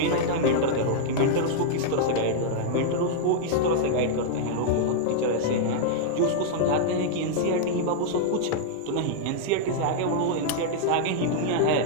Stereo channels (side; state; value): both; different; correlation -0.01